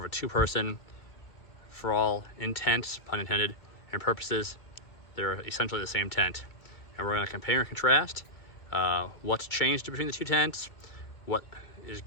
a 2-person. For all intents, pun intended, and purposes, they're essentially the same tent. And we're going to compare and contrast what's changed between the two tents, what is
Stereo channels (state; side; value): late; right; 2.1 ms